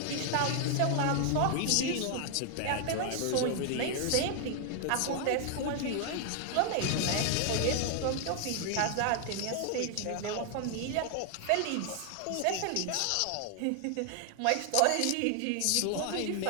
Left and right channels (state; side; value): different; both; correlation 0.00